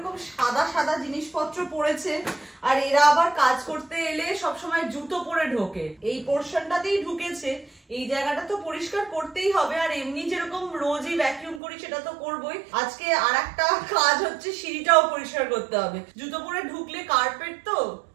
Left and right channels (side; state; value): left; drops out; at 11.6 s